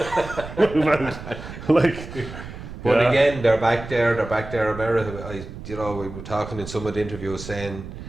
move out. But again, they're back there. They're back there. America. We were talking in some of the interviews saying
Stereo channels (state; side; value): noise; right; rumble, 12 dB below the sound